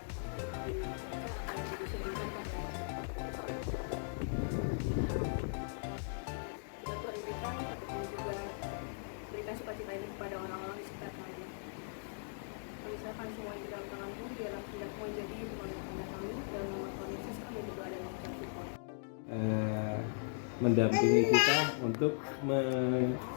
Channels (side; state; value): right; silent; digital silence